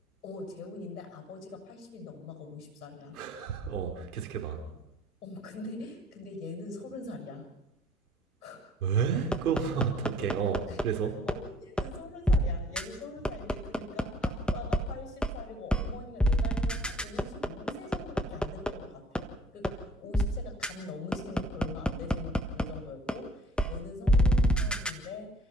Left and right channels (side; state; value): both; normal; correlation 0.54